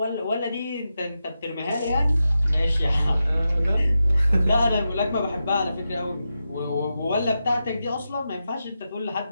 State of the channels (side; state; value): both; inverted; correlation -0.89